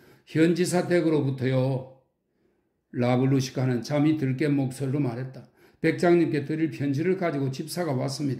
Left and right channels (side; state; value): both; identical; correlation 1.00